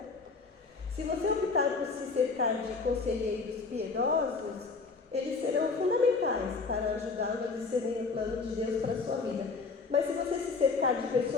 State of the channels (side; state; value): right; quieter; 4.4 dB